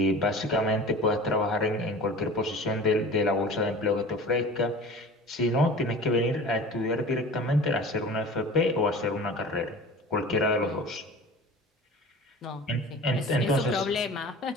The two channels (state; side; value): normal; both; correlation 0.39